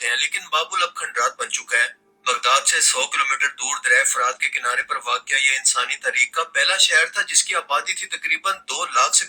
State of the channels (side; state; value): both; identical; correlation 1.00